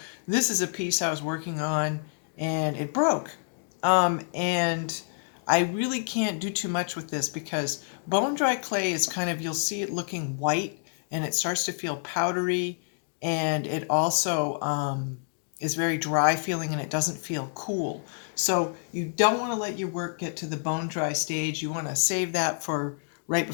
this is a piece I was working on and it broke. And I really can't do too much with this because bone dry clay is kind of, you'll see it looking white and it starts to feel powdery, and it also is very dry feeling and it doesn't feel cool. So you don't want to let your work get to the bone dry stage. You want to save that for right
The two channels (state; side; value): silent; right; digital silence